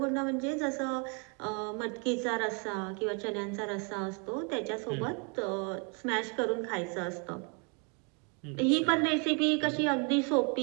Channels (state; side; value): quieter; left; 35.7 dB